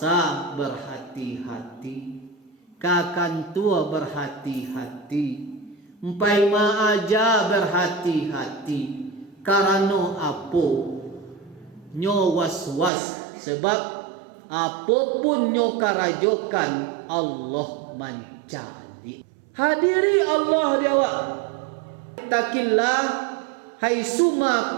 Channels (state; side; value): drops out; left; at 12.9 s